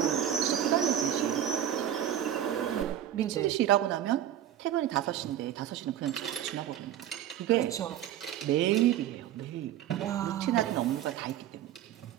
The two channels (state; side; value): quieter; left; 11.1 dB